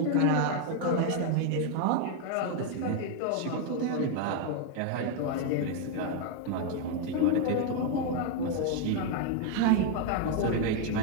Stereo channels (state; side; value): different; both; correlation 0.00